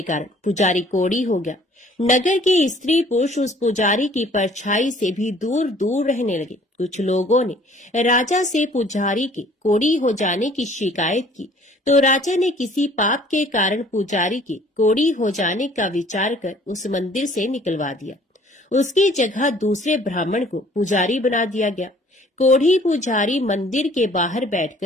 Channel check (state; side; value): normal; both; correlation 0.55